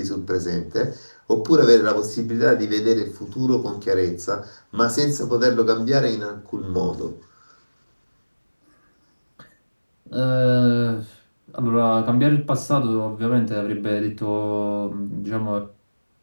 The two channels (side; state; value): both; inverted; correlation -1.00